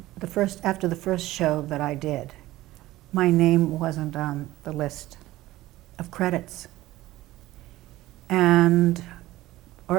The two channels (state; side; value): quieter; left; 16.7 dB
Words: after the first show that I did, my name wasn't on the list of credits, or